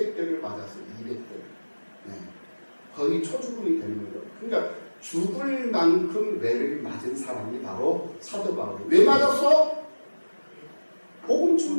맞았어요. 200대. 거의 초죽음이 되는 거죠. 그러니까 죽을 만큼 매를 맞은 사람이 바로 사도 바울이에요. 왜 맞았어? 복음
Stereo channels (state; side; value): inverted; both; correlation -1.00